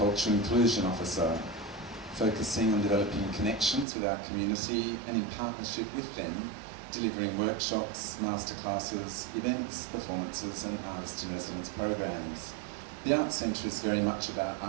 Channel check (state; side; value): drops out; left; at 3.9 s